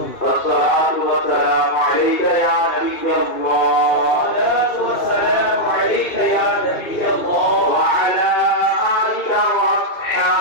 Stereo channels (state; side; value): late; right; 2.5 ms